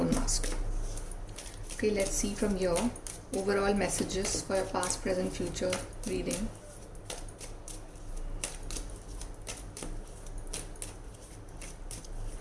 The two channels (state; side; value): identical; both; correlation 1.00